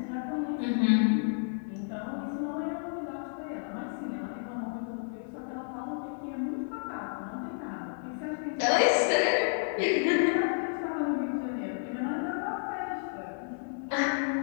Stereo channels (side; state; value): right; silent; 57 dB below the other